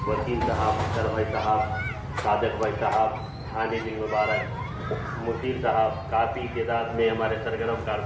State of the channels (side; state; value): both; identical; correlation 1.00